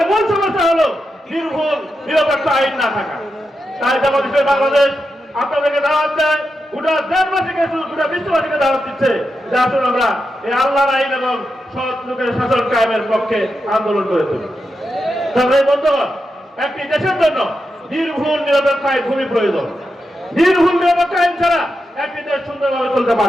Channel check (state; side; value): normal; both; correlation 0.87